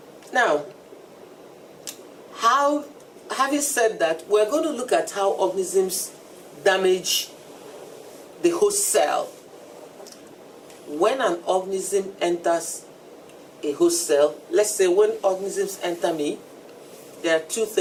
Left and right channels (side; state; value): both; identical; correlation 1.00